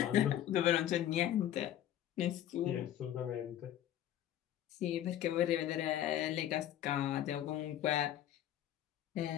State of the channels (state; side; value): quieter; right; 11.7 dB